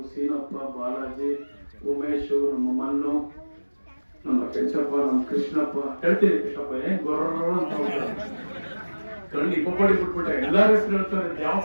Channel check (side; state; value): both; inverted; correlation -1.00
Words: ಸೀನಪ್ಪ, ಬಾಲಾಜಿ, ಉಮೇಶ್, ನಮ್ಮ ಮನ್ನು, ನಮ್ಮ ಕೆಂಚಪ್ಪ, ನಮ್ಮ ಕೃಷ್ಣಪ್ಪ, ಹೇಳ್ತೀನಿ ಕೃಷ್ಣಪ್ಪ ಏನ್ ಗೊರ್ರ ಅಂತ ಕಣ್ಣಿ ಪಪ್ಪಡಿ ಬಿಟ್ಬಿಟ್ಟೆ ಎಲ್ಲಾರ ಹೆಸರು ಹೇಳ್ತಾರೆ. ಯಾವ